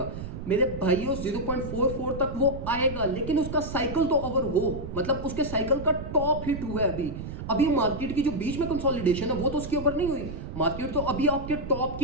मेरे भाइयों 0.44 तक वो आएगा, लेकिन उसका साइकिल तो ओवर हो, मतलब उसके साइकिल का टॉप हिट हुआ है अभी मार्केट की जो बीच में कंसोलिडेशन है वो तो उसकी ओवर नहीं हुई। मार्केट तो अभी आपके टॉप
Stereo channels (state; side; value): noise; right; rumble, 8 dB below the sound